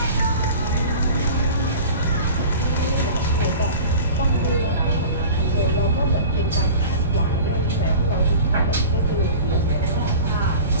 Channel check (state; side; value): inverted; both; correlation -0.38